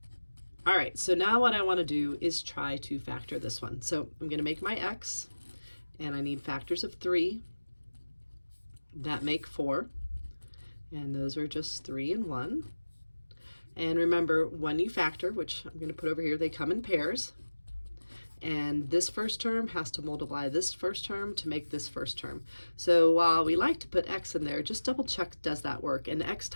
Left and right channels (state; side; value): inverted; both; correlation -1.00